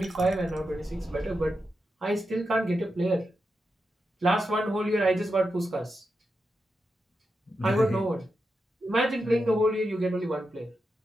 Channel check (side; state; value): both; normal; correlation 0.87